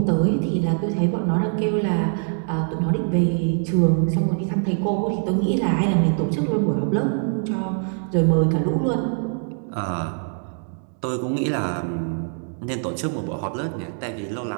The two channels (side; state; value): left; silent; 59 dB below the other